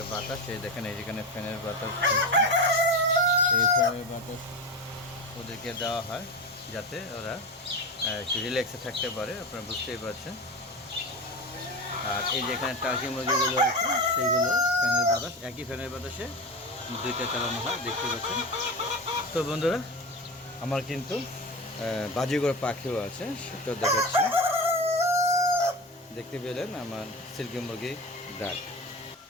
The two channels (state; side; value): normal; both; correlation 0.24